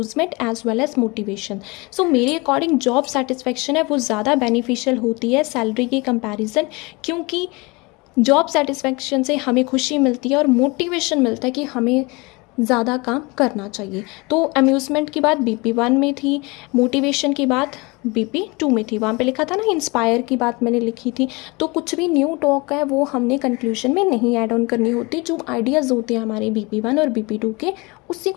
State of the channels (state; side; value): quieter; right; 25.9 dB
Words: as well as motivation. So मेरे अकॉर्डिंग जॉब सेटिस्फैक्शन है वो ज़्यादा बेनिफिशियल होती है सैलरी के कंपैरिजन, क्योंकि जॉब सेटिस्फैक्शन से हमें खुशी मिलती है और मोटिवेशन मिलता है कि हमें ज़्यादा काम करना चाहिए। तो अम्यूज़मेंट की बात BP1 में थी, मोटिवेशन की बात BP2 में थी, वहाँ पे लिखा था ना इंस्पायर की बात मैंने लिखी थी। तो कुछ भी न्यू टॉक है वो हमने कंक्लूजन में नहीं ऐड ऑन करनी होती, जो आइडियाज़ होते हैं हमारे BP1 और BP2 के, उसी